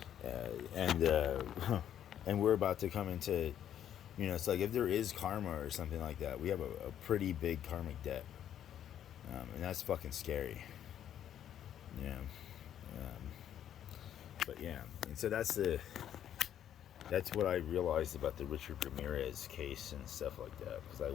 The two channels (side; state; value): right; quieter; 10.3 dB